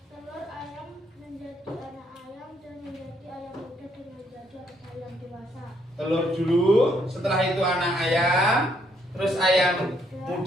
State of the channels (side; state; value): both; normal; correlation 0.71